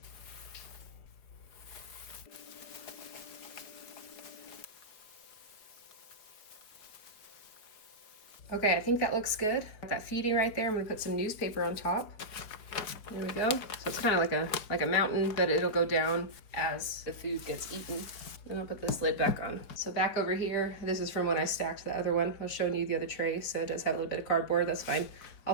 Okay, I think that looks good. Got that feeding right there. I'm gonna put some newspaper on top. There we go. So it's kind of like a mountain, but it'll go down as the food gets eaten. Then I'll put this lid back on. So back over here, this is from when I stacked the other one. I was showing you the other tray, so it does have a little bit of cardboard. That's fine.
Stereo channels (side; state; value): right; late; 4.5 ms